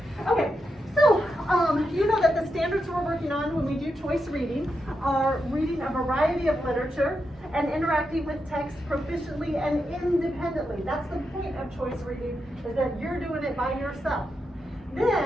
Okay, so you know that the standards we're working on when we do choice reading are reading a variety of literature and interacting with text proficiently and independently. That's the point of choice reading, is that you're doing it by yourself.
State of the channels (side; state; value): both; normal; correlation 0.86